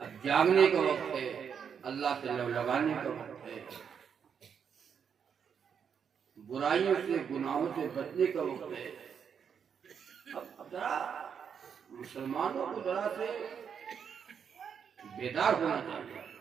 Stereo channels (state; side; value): quieter; left; 7.3 dB